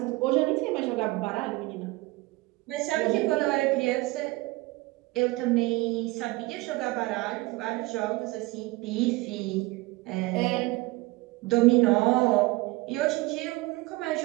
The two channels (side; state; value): left; quieter; 21.5 dB